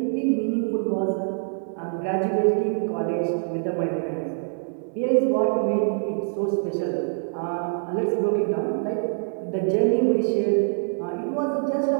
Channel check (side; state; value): left; silent; 62 dB below the other